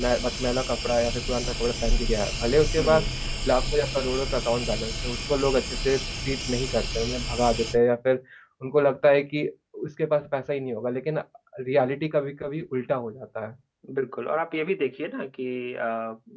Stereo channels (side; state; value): both; identical; correlation 1.00